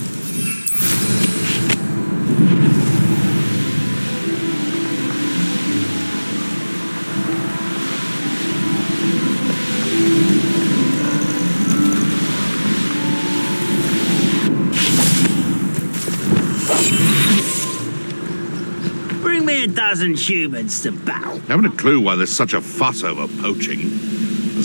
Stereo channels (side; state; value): both; inverted; correlation -1.00